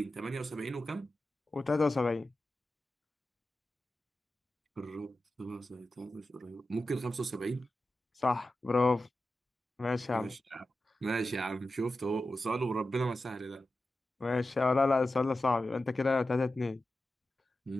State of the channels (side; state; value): both; normal; correlation 0.92